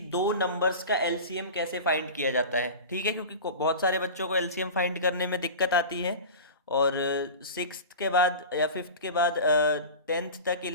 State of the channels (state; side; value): inverted; both; correlation -0.32